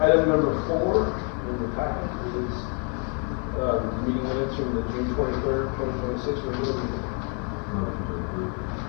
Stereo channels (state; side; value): quieter; right; 38.2 dB